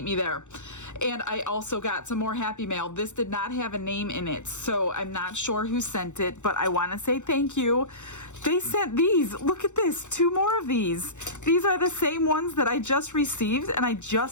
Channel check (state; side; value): late; right; 0.84 ms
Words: me there. And I also got some more Happy Mail. This did not have a name in it, so I'm not sure who sent it, but I want to say thank you. They sent these. Look at this, 2 more of these. These are the same ones that I just received, and I